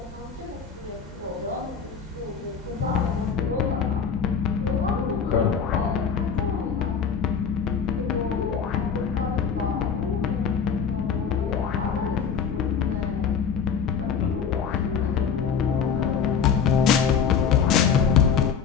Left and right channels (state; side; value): quieter; right; 6.7 dB